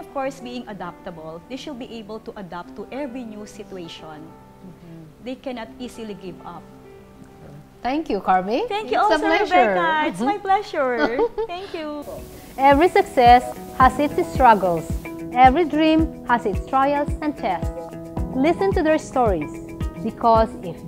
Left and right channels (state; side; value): identical; both; correlation 1.00